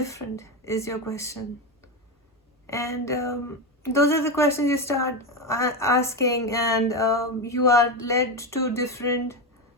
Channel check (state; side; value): normal; both; correlation 0.14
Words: is your question. And those are the questions you start asking, and you are led to different